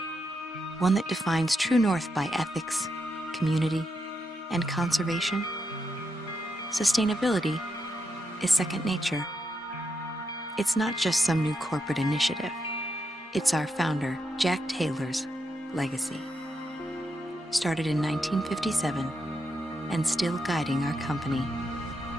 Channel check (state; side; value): normal; both; correlation 0.83